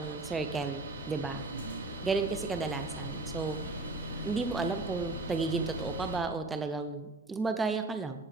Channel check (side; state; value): left; quieter; 3.2 dB